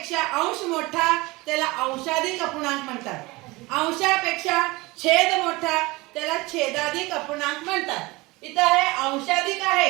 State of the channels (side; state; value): left; quieter; 22.5 dB